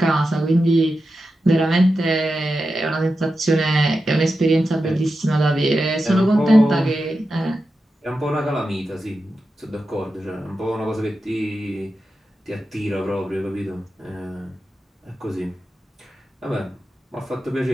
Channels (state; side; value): normal; both; correlation 0.90